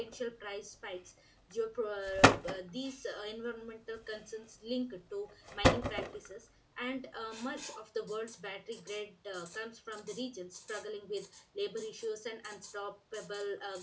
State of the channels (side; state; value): both; identical; correlation 1.00